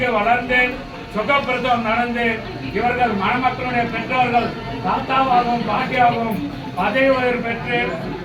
வளர்ந்து சுகப்பிரசவம் நடந்து இவர்கள் மணமக்களுடைய பெற்றோர்கள் தாத்தாவாகவும் பாட்டியாகவும் பதவி உயர்வு பெற்று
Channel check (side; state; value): both; identical; correlation 1.00